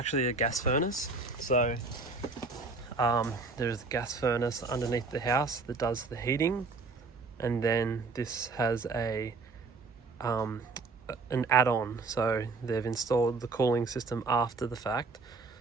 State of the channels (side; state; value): left; quieter; 4.0 dB